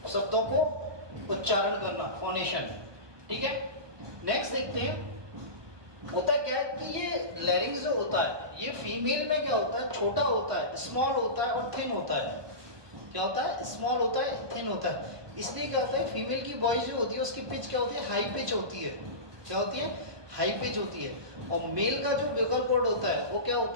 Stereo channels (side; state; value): left; late; 1.2 ms